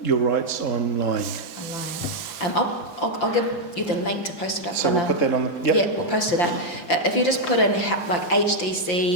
your rights online? I'll give you the link to post it up. So we'll put that on the... Yeah, we'll post it up. If you just put in like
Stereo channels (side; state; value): right; late; 5.3 ms